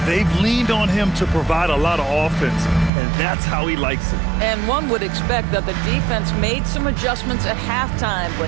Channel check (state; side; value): drops out; left; at 2.9 s